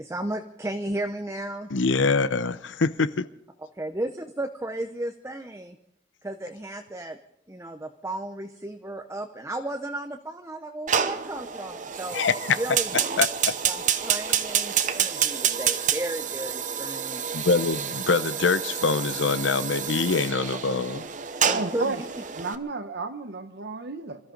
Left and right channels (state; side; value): normal; both; correlation 0.08